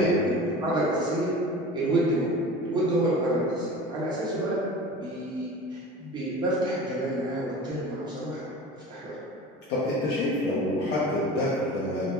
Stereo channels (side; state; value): both; normal; correlation 0.37